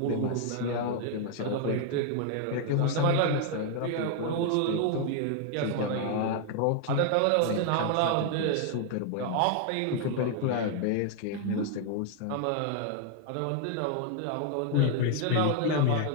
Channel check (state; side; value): different; both; correlation 0.00